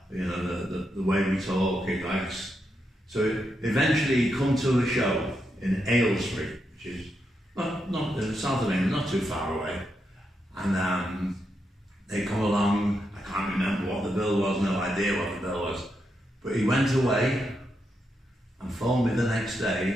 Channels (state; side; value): normal; both; correlation 0.83